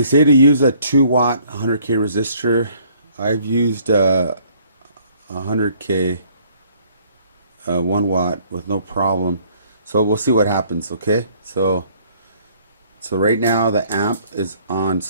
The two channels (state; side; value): inverted; both; correlation -0.60